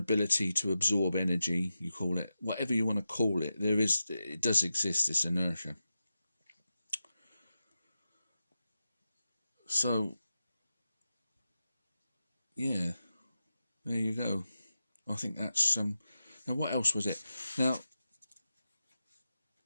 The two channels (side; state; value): both; inverted; correlation -0.91